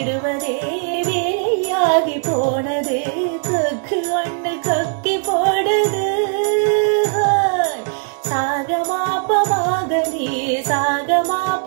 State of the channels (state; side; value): silent; left; 57 dB below the other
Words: வேலையாகி போனது, கக்கு ஒண்ணு கக்கி போடுது. சாகமாப்பமாகனி